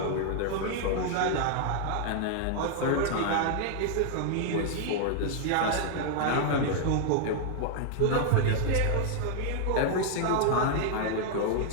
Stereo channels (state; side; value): different; both; correlation 0.00